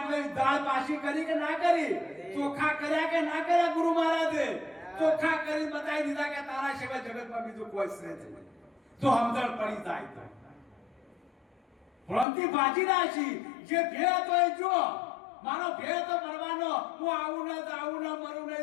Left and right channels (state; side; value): drops out; right; at 12.2 s